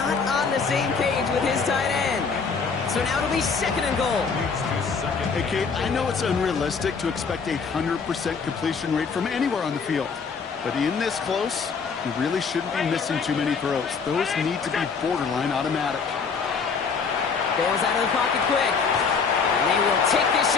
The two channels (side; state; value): right; quieter; 5.4 dB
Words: on the same page with his tight end. So now it'll be 2nd and goal. Hey, Kate, I know it's unrealistic to expect a 100% completion rate from anywhere on the field. But in this close, you really shouldn't be missing too many throws. Those need to be borderline automatic. Bails out of the pocket quick. And they will take this